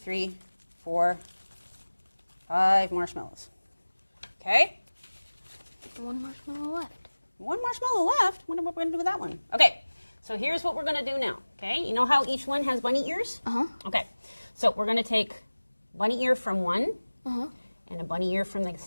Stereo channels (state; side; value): inverted; both; correlation -1.00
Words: 4, 5 marshmallows. Okay? One marshmallow left. 1 marshmallow left. What are we going to do with that one? Okay. So here's what we're going to do now. Okay? You know how each one has bunny ears? Uh-huh. Okay. So we're going to take bunny ear from one Uh-huh. and a bunny ear from the